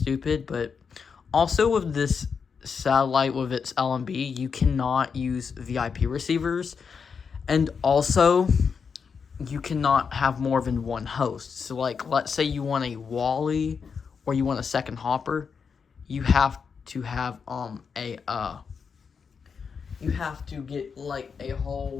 But also with this satellite, with its LMB, you cannot use VIP receivers, and also you cannot have more than one host. So like, let's say you want a Wally or you want a second Hopper, you have to have you have to get like a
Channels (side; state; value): right; quieter; 6.0 dB